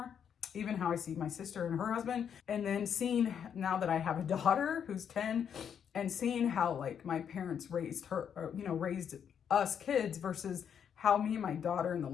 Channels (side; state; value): right; quieter; 8.1 dB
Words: even how I see my sister and her husband, and then seeing now that I have a daughter who's 10, and seeing how like my parents raised her, or, you know, raised us kids versus how me and my daughter and the